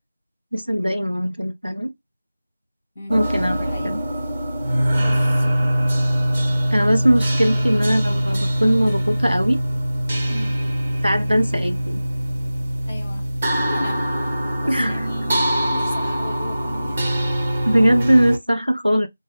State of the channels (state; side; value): inverted; both; correlation -0.97